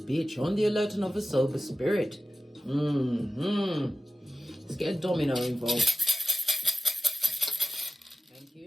on the alert and of a sober spirit. Let's get a domino involved. Thank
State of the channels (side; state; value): both; normal; correlation 0.95